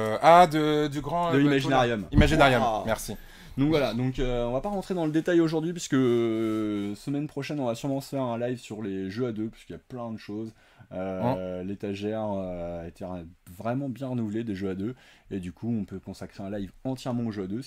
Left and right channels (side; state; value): both; identical; correlation 1.00